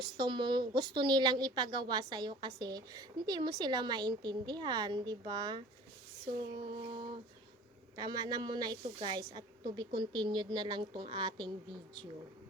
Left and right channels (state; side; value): normal; both; correlation 0.45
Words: nilang ipagawa sa iyo kasi hindi mo sila maintindihan, 'di ba? So, tama na muna ito guys, at to be continued na lang tong ating video.